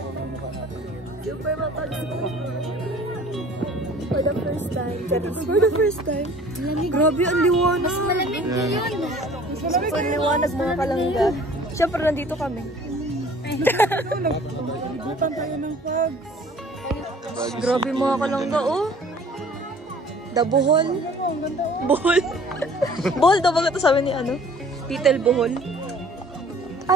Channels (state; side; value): normal; both; correlation 0.51